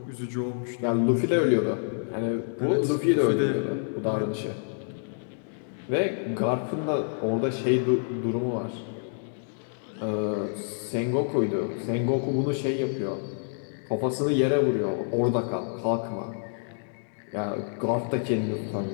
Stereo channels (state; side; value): silent; right; digital silence